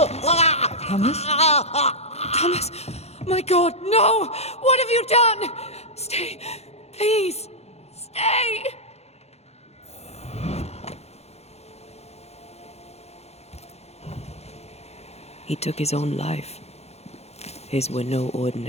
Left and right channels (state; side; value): late; right; 0.31 ms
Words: Thomas? Thomas! My God, no! What have you done? Stay, please. Stay! He took his own life. His were no